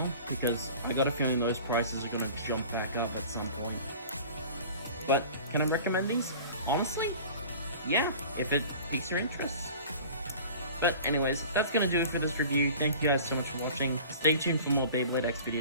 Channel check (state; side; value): inverted; both; correlation -0.42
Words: because I got a feeling those prices are going to jump back up at some point. But can I recommend these? Honestly, yeah, if it piques your interest. But anyways, that's going to do it for this review. Thank you guys so much for watching. Stay tuned for more Beyblade X